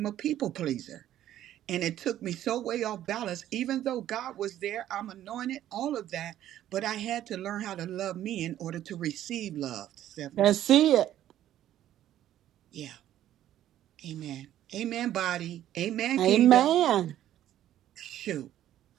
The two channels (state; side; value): quieter; left; 12.3 dB